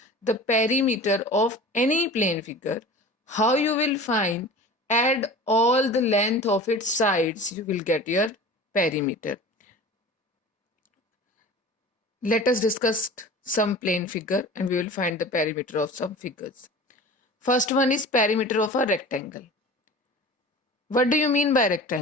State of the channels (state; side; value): normal; both; correlation 0.38